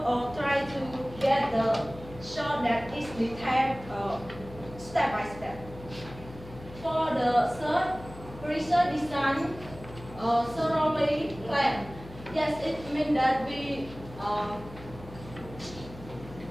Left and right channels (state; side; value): noise; left; hum, 16 dB below the sound